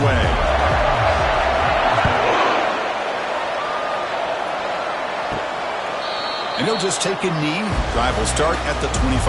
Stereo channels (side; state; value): both; identical; correlation 1.00